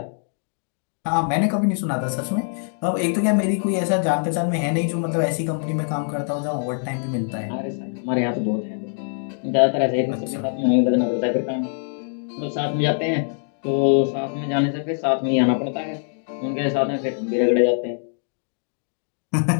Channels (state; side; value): silent; right; digital silence